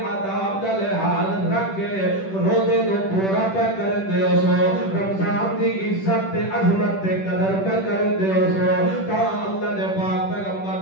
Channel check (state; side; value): late; right; 10 ms